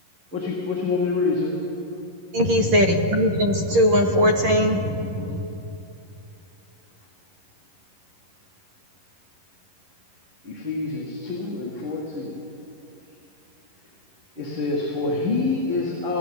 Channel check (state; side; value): late; left; 11 ms